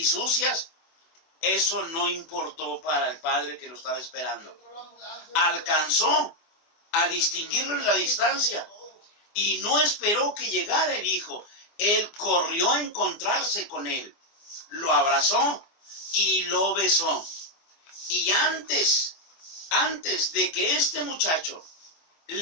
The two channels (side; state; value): right; late; 24 ms